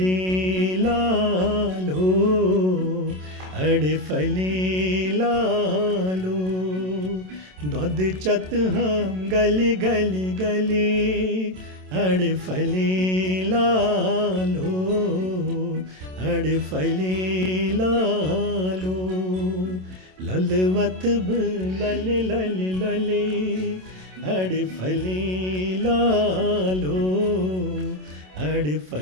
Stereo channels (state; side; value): late; left; 27 ms